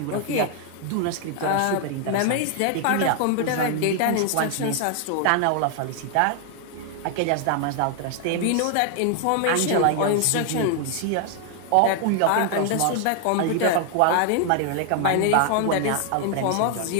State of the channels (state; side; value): different; both; correlation 0.00